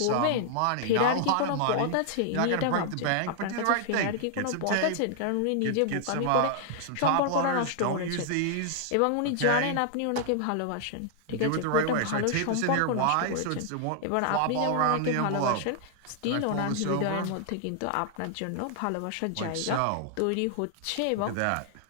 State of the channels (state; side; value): different; both; correlation 0.00